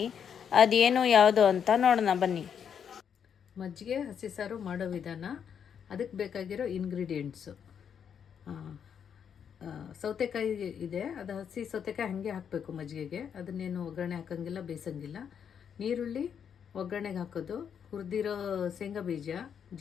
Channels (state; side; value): quieter; right; 7.8 dB